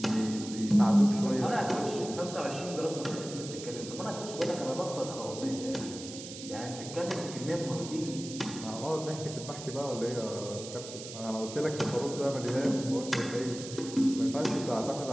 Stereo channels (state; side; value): noise; right; hiss, 11 dB below the sound